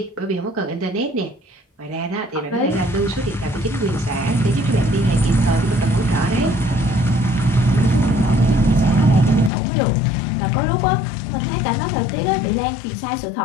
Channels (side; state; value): right; drops out; at 9.5 s